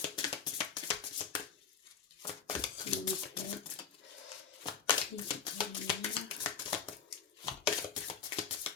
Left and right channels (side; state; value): right; quieter; 6.7 dB